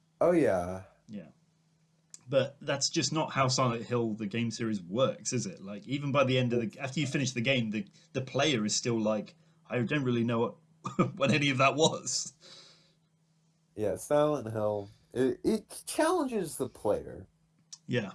oh yeah, Yeah, But that's just not how Silent Hill the game series works, is it? Like even by the end of after you finish the game, the player is still like, I don't really know what what any of that was. Yeah, Silent Hill. It challenges the player Yeah.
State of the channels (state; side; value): identical; both; correlation 1.00